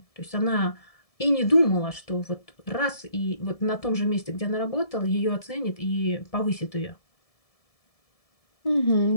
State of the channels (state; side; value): late; right; 1.7 ms